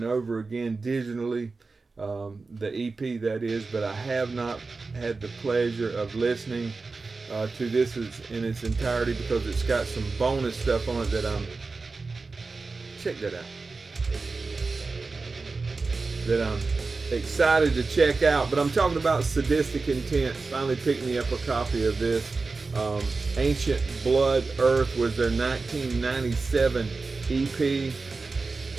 over again digitally, the EP that is, but I have not had the pleasure of listening to this in its entirety because it's got some bonus stuff on it that check that out. That I'm excited to check out, but I'm talking about Sadistic Intent. Finally picked me up a copy of this. Ancient Blood Earth was their 1997 EP.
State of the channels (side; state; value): left; quieter; 4.0 dB